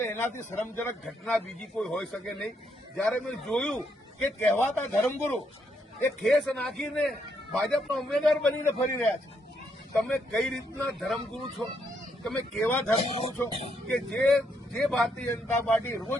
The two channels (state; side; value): normal; both; correlation 0.76